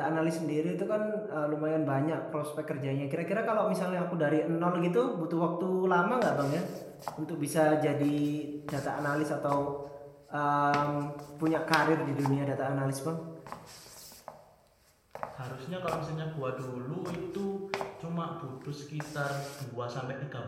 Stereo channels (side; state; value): both; identical; correlation 1.00